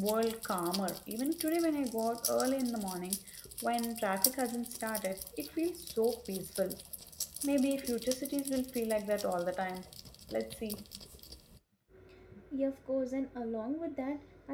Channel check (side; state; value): both; identical; correlation 1.00